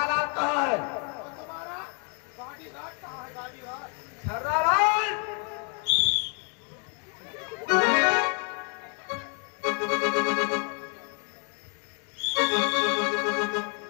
कहाँ है? छर्रालाल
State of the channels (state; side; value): quieter; right; 35.4 dB